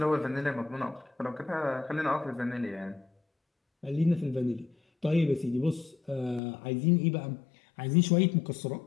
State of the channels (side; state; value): right; drops out; at 6.4 s